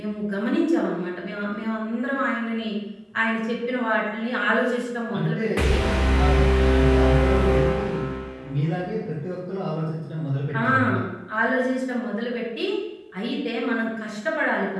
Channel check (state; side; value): identical; both; correlation 1.00